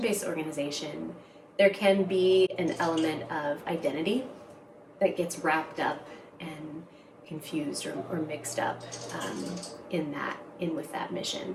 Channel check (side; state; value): both; identical; correlation 1.00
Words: organization, there can be an element of identity that gets wrapped up and confused or mixed up in with that mission,